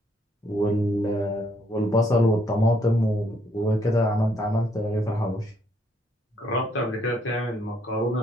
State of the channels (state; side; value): normal; both; correlation 0.69